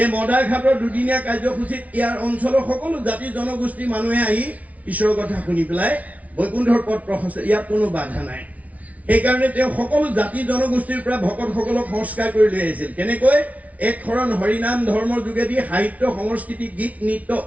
এই মদাৰঘাটৰ দুদিনীয়া কাৰ্যসূচীত ইয়াৰ অঞ্চলৰ সকলো জাতি জনগোষ্ঠীৰ মানুহে আহি ঈশ্বৰৰ কথা শুনি পেলাই বৈকুণ্ঠৰ পথ প্ৰশস্ত, ইয়াত কোনো বাধা নাই। সেইকাৰণে তেওঁ সকলো জাতি জনগোষ্ঠীৰ পৰা ভকতসকলক সংস্কাৰ কৰি লৈ আহিছিল। কেনেকৈ? এক শৰণ হৰিনাম ধৰ্মৰ যোগেদি সাহিত্য সংস্কৃতি গীত নৃত্য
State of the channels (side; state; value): left; late; 0.069 ms